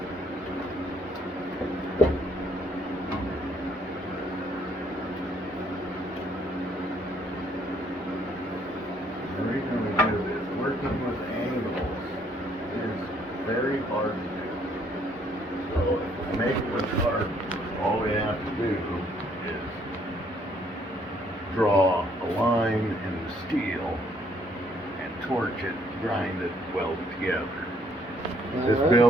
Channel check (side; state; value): both; normal; correlation 0.66